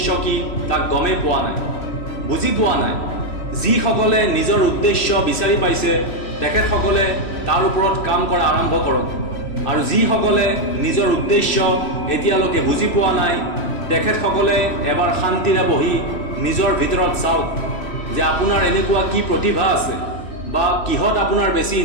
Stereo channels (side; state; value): right; late; 3.1 ms